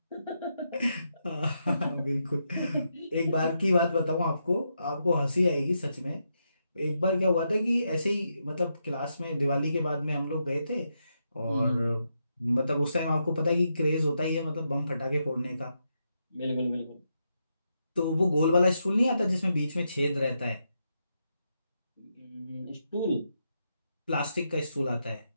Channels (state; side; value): inverted; both; correlation -0.83